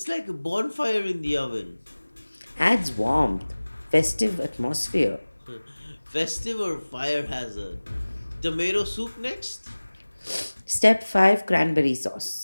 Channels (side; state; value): both; inverted; correlation -1.00